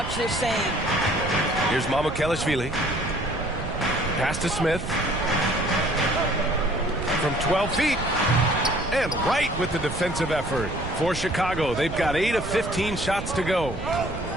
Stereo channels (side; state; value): right; noise; rumble, 8 dB below the sound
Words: the same. Here's Mamukelashvili. Pass to Smith. From 12 feet. And right with the defensive effort. For Chicago, they've got 8 of 15 shots to go.